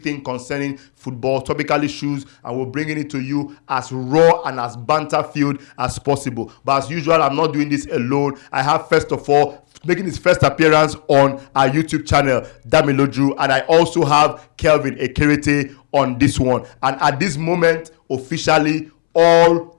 concerning football, topical issues, and we're bringing it to you as raw and as banter-filled as possible. But as usual, I'm not doing this alone. I have, first of all, making his first appearance on our YouTube channel, Damiloju, and I also have Kelvin Ekerete on this one. And at this moment, officially, all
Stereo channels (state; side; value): silent; right; 69 dB below the other